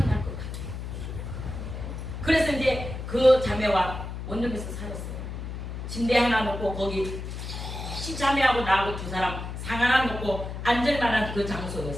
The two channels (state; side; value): noise; left; hum, 7 dB below the sound